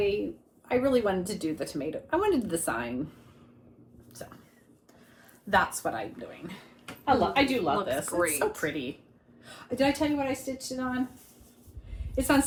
really wanted to do the tomato. I wanted the sign. So that's what I'm doing. I do love Looks this. great. It's so pretty. Did I tell you what I stitched it on? It's on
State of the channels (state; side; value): identical; both; correlation 1.00